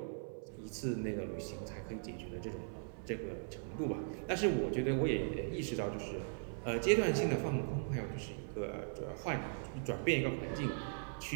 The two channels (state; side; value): silent; left; 52 dB below the other